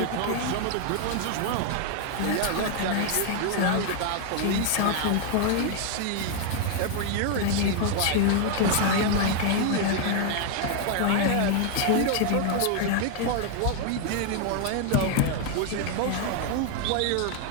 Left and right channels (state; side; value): different; both; correlation 0.00